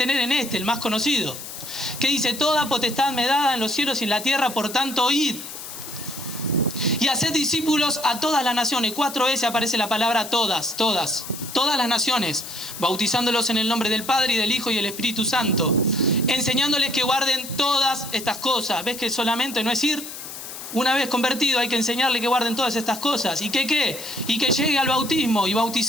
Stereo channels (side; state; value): left; noise; hiss, 11 dB below the sound